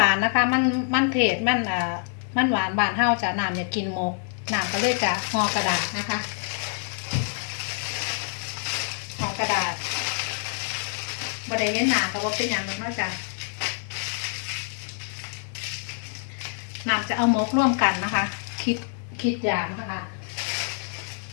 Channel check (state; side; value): silent; right; digital silence